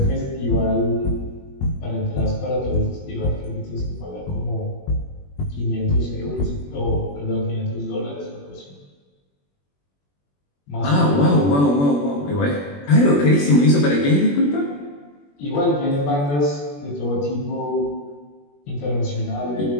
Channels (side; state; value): right; late; 21 ms